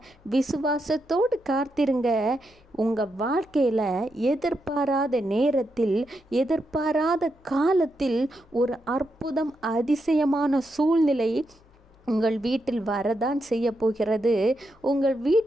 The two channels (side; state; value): left; noise; hum, 30 dB below the sound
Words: விசுவாசத்தோடு காத்திருங்க. உங்கள் வாழ்க்கையில் எதிர்பாராத நேரத்தில், எதிர்பாராத காலத்தில் ஒரு அற்புதம், அதிசயமான சூழ்நிலை உங்கள் வீட்டில் வரதான் செய்ய போகிறது. உங்கள்